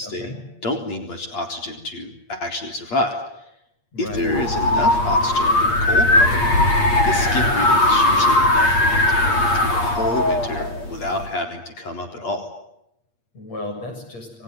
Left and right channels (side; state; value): right; late; 8.5 ms